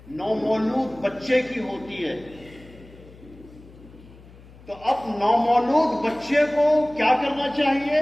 نومولود بچے کی ہوتی ہے۔ تو اب نومولود بچے کو کیا کرنا چاہیے؟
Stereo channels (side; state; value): left; noise; hum, 22 dB below the sound